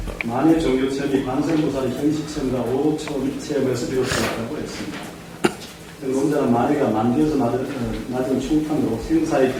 만의 종교 체험이 관세음보살의 현실 체험과 오초 체험에서 비롯되었다고 했습니다. 논자는 만해가 만디에서 맞은 충판으로 생사에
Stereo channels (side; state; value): both; identical; correlation 1.00